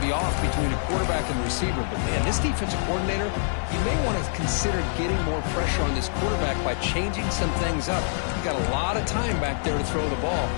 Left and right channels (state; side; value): silent; right; 61 dB below the other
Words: off between a quarterback and the receiver. But, man, this defensive coordinator, you may want to consider getting more pressure on this quarterback by changing some things up. You've got a lot of time back there to throw the ball.